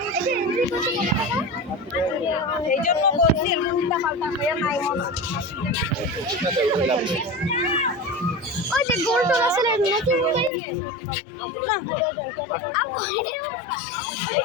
এই জন্য বলছি উল্টা পাল্টা হয়ে নাই মনে। ওই যে গোল টোল আছে না, নাকি না আপু এটা না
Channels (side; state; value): right; drops out; at 10.5 s